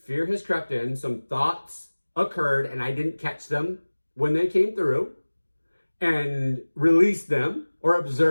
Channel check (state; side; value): inverted; both; correlation -1.00